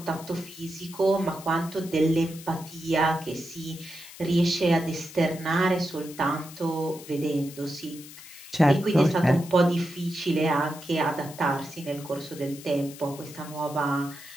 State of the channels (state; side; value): noise; left; hiss, 16 dB below the sound